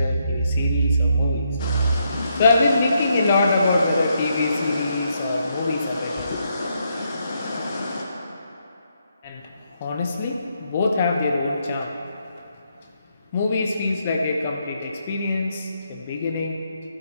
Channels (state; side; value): inverted; both; correlation -0.78